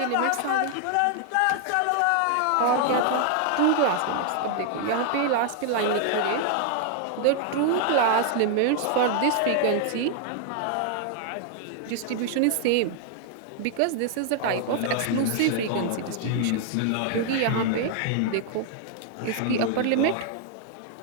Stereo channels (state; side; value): different; both; correlation 0.00